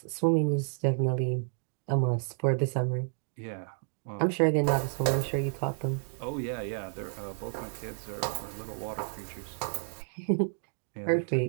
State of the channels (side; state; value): left; silent; 57 dB below the other